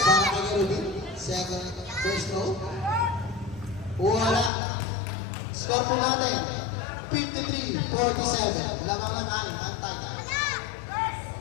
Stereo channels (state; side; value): drops out; right; at 4.5 s